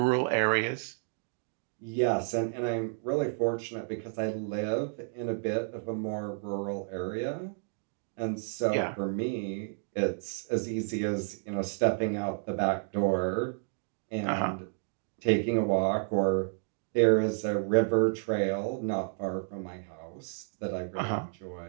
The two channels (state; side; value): silent; left; digital silence